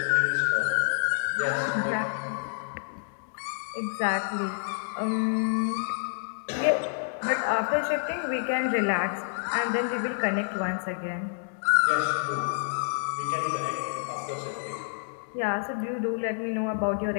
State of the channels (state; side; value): silent; right; digital silence